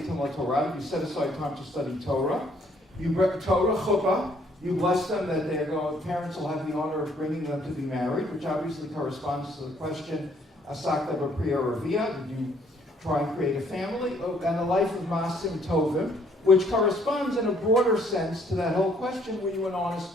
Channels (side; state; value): both; normal; correlation 0.65